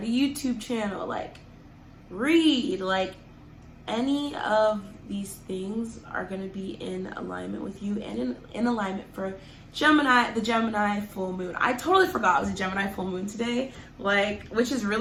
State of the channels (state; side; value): identical; both; correlation 1.00